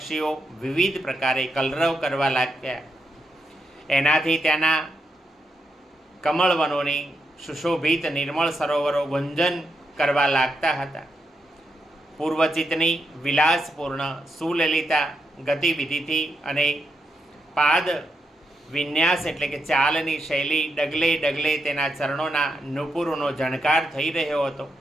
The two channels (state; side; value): normal; both; correlation 0.83